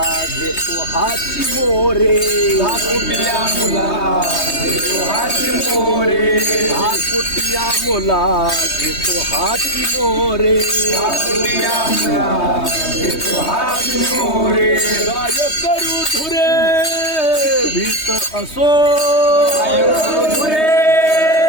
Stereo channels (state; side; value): late; right; 3.2 ms